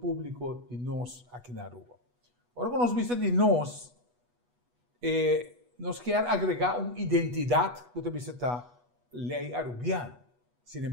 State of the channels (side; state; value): left; late; 8.2 ms